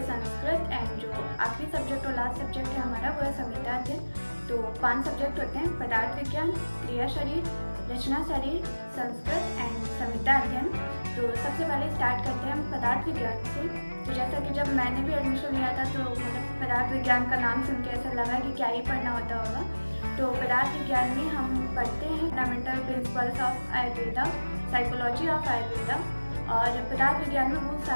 संस्कृत, एंड जो आखिरी सब्जेक्ट और लास्ट सब्जेक्ट है हमारा वो है संहिता अध्ययन। तो 5 सब्जेक्ट होते हैं: पदार्थ विज्ञान, क्रिया शरीर, रचना शरीर, संस्कृत एंड संहिता अध्ययन। तो सबसे पहले स्टार्ट करते हैं हम पदार्थ विज्ञान से। तो जैसा कि जब मैंने भी एडमिशन लिया था तो मतलब पदार्थ विज्ञान का नाम सुन के ऐसा लगा कि क्या ही पढ़ना होता होगा। तो पदार्थ विज्ञान में हम पढ़ते हैं fundamental principles of Ayurveda, psychology of Ayurveda, और पदार्थ विज्ञान में बहुत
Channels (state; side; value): inverted; both; correlation -1.00